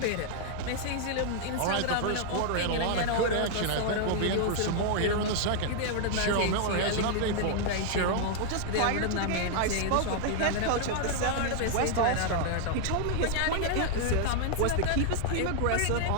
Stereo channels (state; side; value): different; both; correlation 0.00